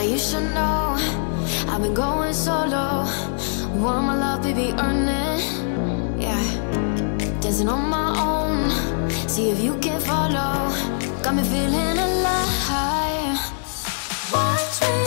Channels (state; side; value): silent; right; digital silence